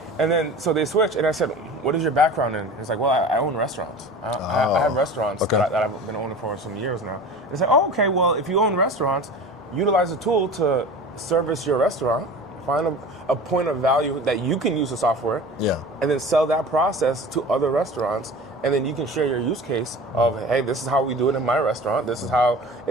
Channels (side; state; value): both; normal; correlation 0.37